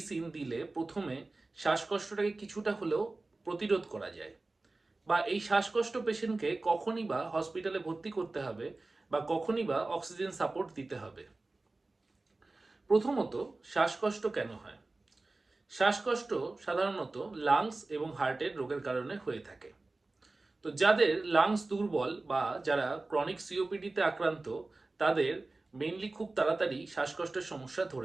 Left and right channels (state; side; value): quieter; left; 3.2 dB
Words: দিলে প্রথমে শ্বাসকষ্টটাকে কিছুটা হলেও প্রতিরোধ করা যায়, বা এই শ্বাসকষ্ট পেশেন্টকে কখনই বা হসপিটালে ভর্তি করতে হবে বা কখনই বা অক্সিজেন সাপোর্ট দিতে হবে। প্রথমত, শ্বাসকষ্ট কেন হয়? শ্বাসকষ্ট সাধারণত লাংস এবং হার্টের রোগের কারণে হয়ে থাকে। তো যাদের লাংস দুর্বল বা যারা ক্রনিক সিওপিডিতে আক্রান্ত তাদের মেইনলি খুব তাড়াতাড়ি শ্বাসকষ্টের সমস্যা